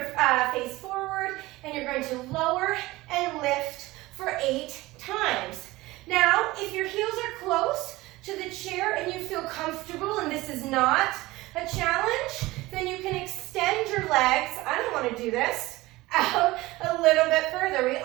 face forward, and you're going to lower and lift feel comfortable and this is not a challenge, then you can extend your legs. I don't want to do this. Out a little bit further. We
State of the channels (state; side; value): quieter; left; 19.5 dB